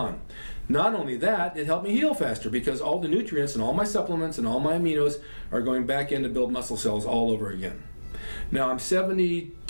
Not only that, it helped me heal faster because all the nutrients and all my supplements and all my aminos are going back in to build muscle cells all over again. Now I'm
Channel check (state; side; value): inverted; both; correlation -1.00